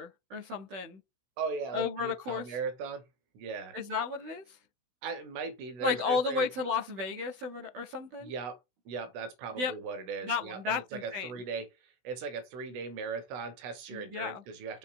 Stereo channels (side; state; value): left; late; 16 ms